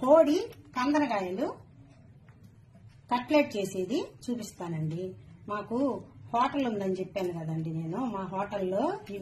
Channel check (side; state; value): both; identical; correlation 1.00